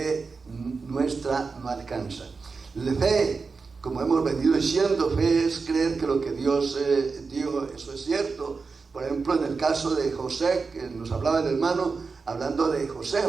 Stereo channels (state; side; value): quieter; left; 4.6 dB